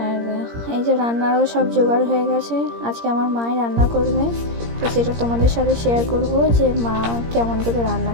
এই যে রান্নারও সব জোগাড় হয়ে গেছে। আজকে আমার মাই রান্না করবে, তো সেটা তোমাদের সাথে শেয়ার করব যে মা কেমন করে রান্না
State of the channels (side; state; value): left; late; 17 ms